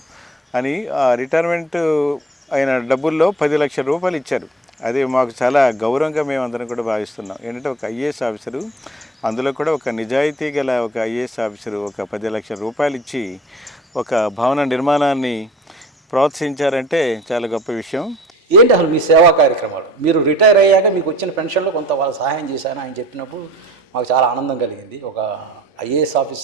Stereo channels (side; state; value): both; normal; correlation 0.46